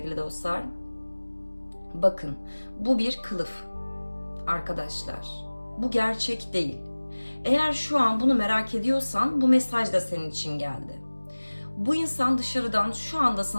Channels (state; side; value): inverted; both; correlation -1.00